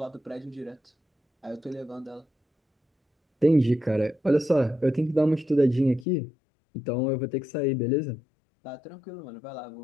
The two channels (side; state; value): right; drops out; at 6.1 s